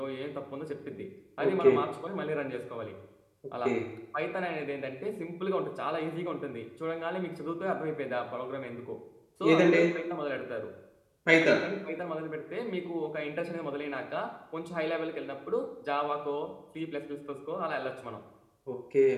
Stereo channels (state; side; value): identical; both; correlation 1.00